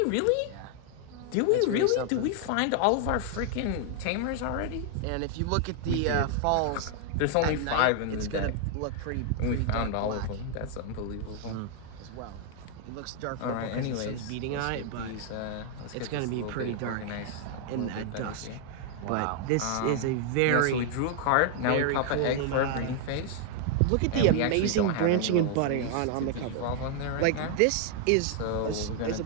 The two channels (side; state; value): both; different; correlation 0.00